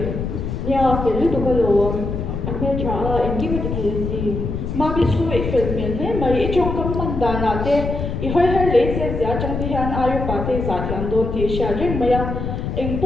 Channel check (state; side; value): noise; left; rumble, 4 dB below the sound